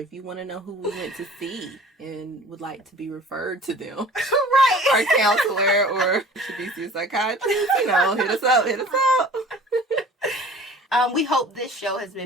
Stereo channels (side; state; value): both; normal; correlation 0.46